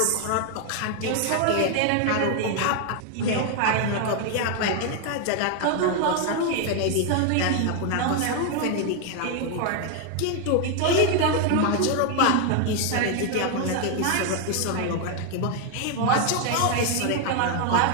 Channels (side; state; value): both; different; correlation 0.01